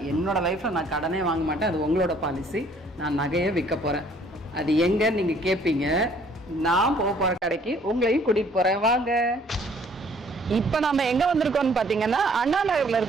என்னோட லைஃப்ல நான் கடனே வாங்க மாட்டேன். அது உங்களோட பாலிசி. நான் நகையை விற்க போறேன். அது எங்கன்னு நீங்க கேட்பீங்க. நான் போற கடைக்கு உங்களையும் கூட்டிட்டு போறேன், வாங்க. இப்ப நம்ம எங்க வந்திருக்கோம்னு பாத்தீங்கன்னா அண்ணா நகர்ல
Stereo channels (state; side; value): normal; both; correlation 0.60